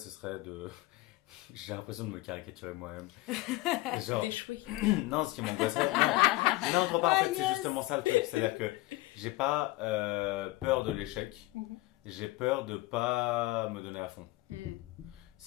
serait de. J'ai l'impression de me caricaturer moi-même. Genre, Échouer. non, ce qui m'angoisserait. Non, trop pas. En Ah, fait, c'est yes. justement ça le truc. C'est-à-dire que j'ai pas peur de l'échec. Mhm. J'ai peur de pas me donner à fond.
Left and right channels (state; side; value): quieter; right; 19.8 dB